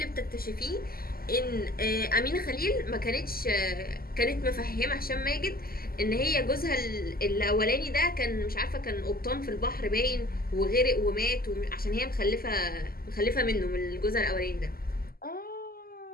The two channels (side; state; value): right; late; 0.43 ms